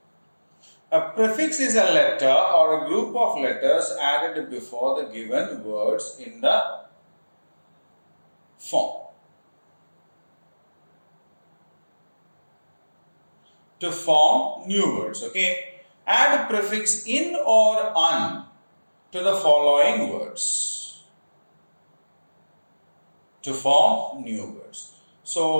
A prefix is a letter or a group of letters added before the given words in the form. To form new words, okay? Add prefix in or un to the following words to form new words.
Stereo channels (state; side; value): inverted; both; correlation -1.00